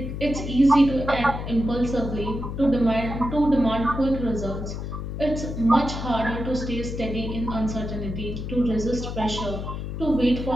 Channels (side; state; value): left; noise; hum, 6 dB below the sound